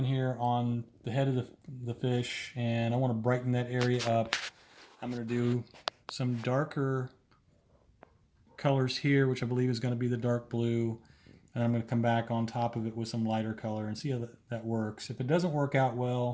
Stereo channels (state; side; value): identical; both; correlation 1.00